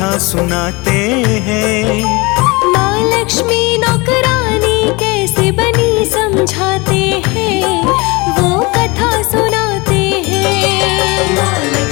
सुनाते हैं। माँ लक्ष्मी नौकरानी कैसे कैसे बनी समझाते हैं, वो कथा सुनाते हैं। माँ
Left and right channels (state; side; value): quieter; right; 25.5 dB